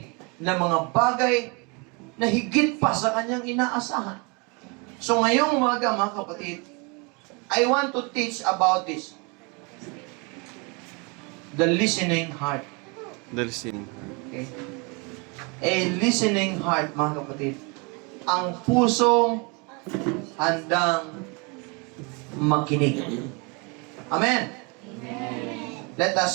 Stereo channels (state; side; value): quieter; left; 30.8 dB